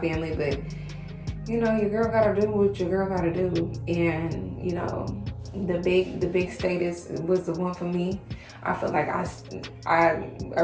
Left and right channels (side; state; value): both; identical; correlation 1.00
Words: but, you know, your girl gotta do what your girl gotta do. And, you know, the big state was the one for me. I feel like I